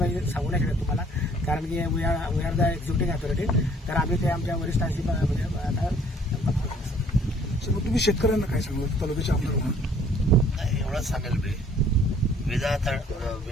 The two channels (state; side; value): normal; both; correlation 0.58